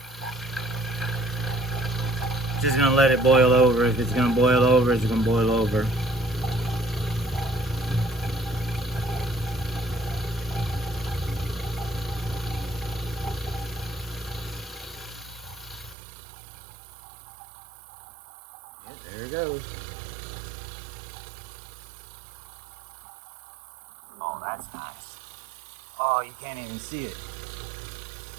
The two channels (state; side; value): drops out; left; at 16.0 s